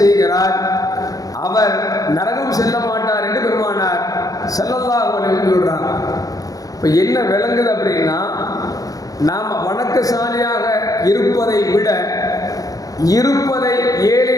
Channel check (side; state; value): right; late; 0.17 ms